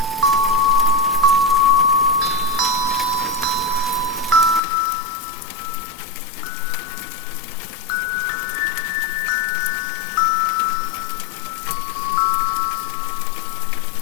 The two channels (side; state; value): right; drops out; at 4.6 s